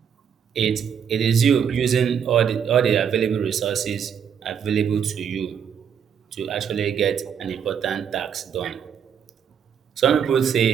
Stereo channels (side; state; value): left; quieter; 7.8 dB